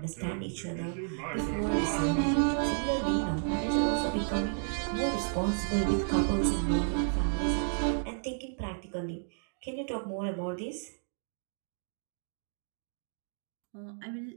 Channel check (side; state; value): left; silent; digital silence